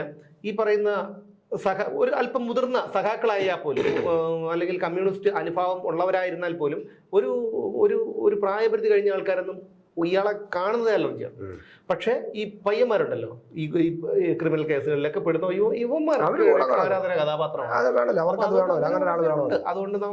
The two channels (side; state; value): both; identical; correlation 1.00